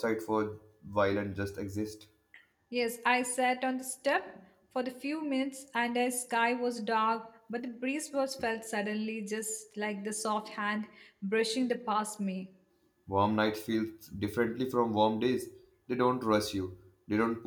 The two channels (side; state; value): both; identical; correlation 1.00